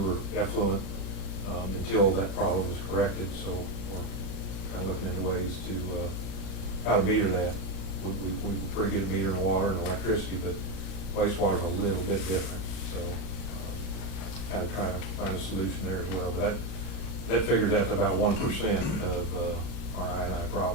effluent until that problem is corrected. So we're kind of looking into ways to how to meter that. We're pretty good at metering water and electricity, but wastewater is a little bit different. So kind of trying to find a solution there as well. But that figures out to about 1% of our I&I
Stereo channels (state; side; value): late; right; 38 ms